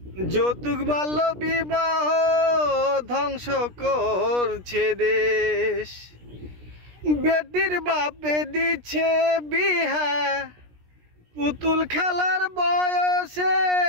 যৌতুক বাল্য বিবাহ ধ্বংস করছে দেশ। বেটির বাপে দিচ্ছে বিহা পুতুল খেলার বয়সে,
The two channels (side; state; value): left; late; 17 ms